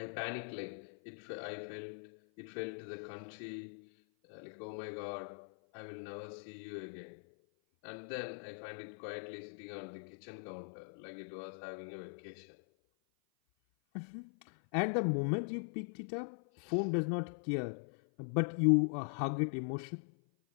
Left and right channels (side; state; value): right; silent; 51 dB below the other